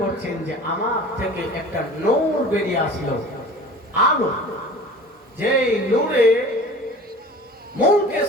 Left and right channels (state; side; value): normal; both; correlation 0.41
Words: করছেন যে আমার থেকে একটা নূর বেরিয়ে আসলো, আলো, যেই নূরে মৌকে